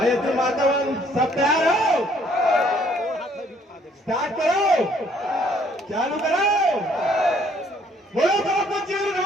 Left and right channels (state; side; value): normal; both; correlation 0.63